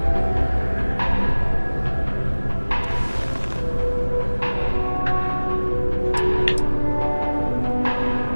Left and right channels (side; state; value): both; inverted; correlation -1.00